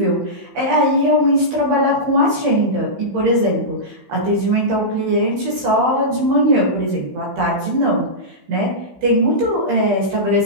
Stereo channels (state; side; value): late; left; 15 ms